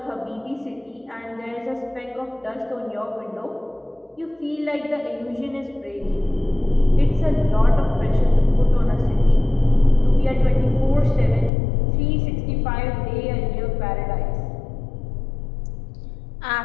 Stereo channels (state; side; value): drops out; right; at 11.5 s